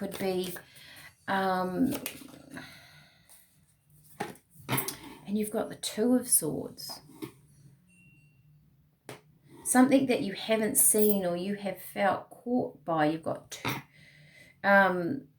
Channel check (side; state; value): both; identical; correlation 1.00